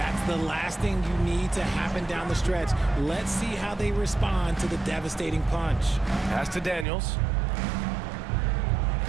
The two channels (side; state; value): left; drops out; at 6.9 s